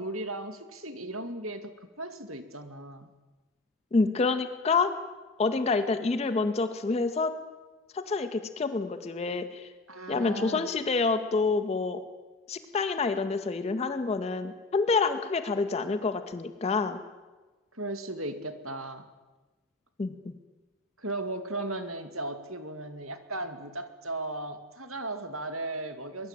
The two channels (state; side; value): quieter; right; 3.0 dB